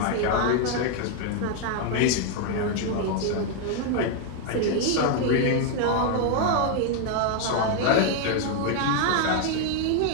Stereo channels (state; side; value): different; both; correlation 0.00